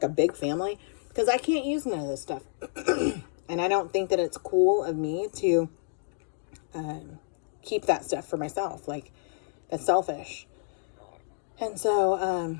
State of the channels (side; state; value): right; silent; digital silence